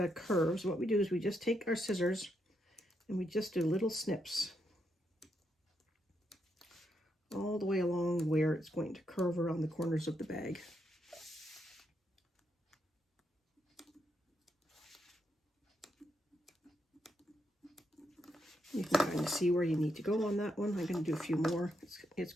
curves, what we do is we just take our scissors and we just do little snips all the way along where it's going to curve around the corners of the bag. You can kind of see where you need to go on that one. I'm going to do a few more. It's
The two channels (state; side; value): normal; both; correlation 0.80